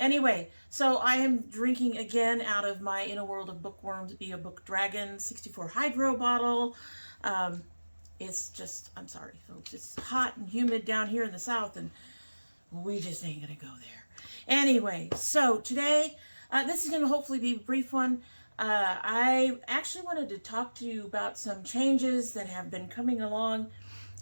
so I am drinking again out of my In a World of Bookworms Be a Book Dragon 64 Hydro bottle. It's just, I'm sorry, folks, it's hot and humid down here in the south, and we just ain't gonna go there. Anyway, so today, this is gonna hopefully be a brief one. I actually wanted to talk to you about some changes that have been coming along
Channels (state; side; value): inverted; both; correlation -1.00